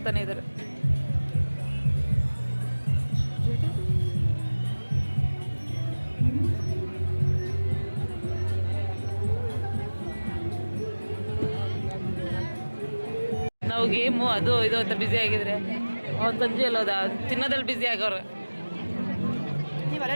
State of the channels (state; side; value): inverted; both; correlation -1.00